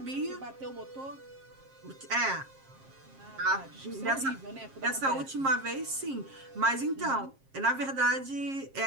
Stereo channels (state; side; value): late; left; 7.5 ms